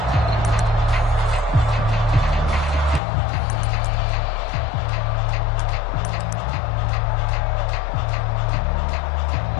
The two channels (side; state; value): right; drops out; at 3.0 s